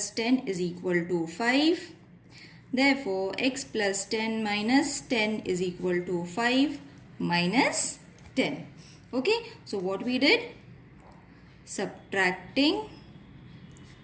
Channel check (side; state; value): both; identical; correlation 1.00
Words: 10 is equal to 5. Therefore, x plus 10 minus 10 is equal to 5 minus 10. Okay. So, what we did? Subtracting